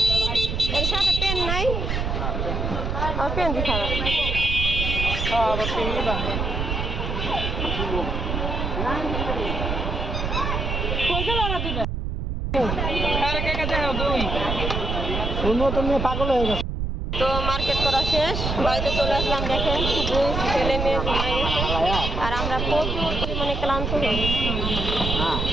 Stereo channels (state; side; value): noise; right; rumble, 2 dB below the sound